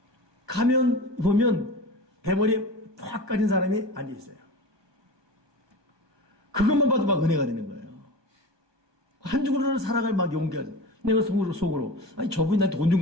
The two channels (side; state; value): left; late; 1.2 ms